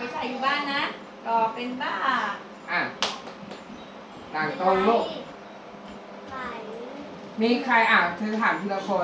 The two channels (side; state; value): both; identical; correlation 1.00